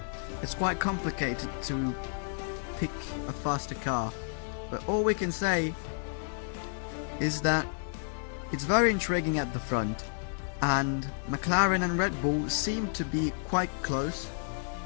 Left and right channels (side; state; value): right; silent; 57 dB below the other